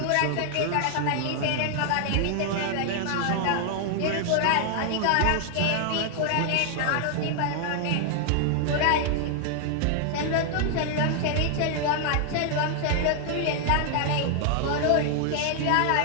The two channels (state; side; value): different; both; correlation 0.00